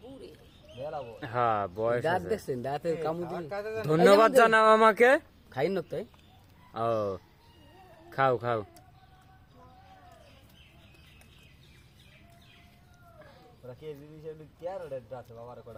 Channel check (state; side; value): identical; both; correlation 1.00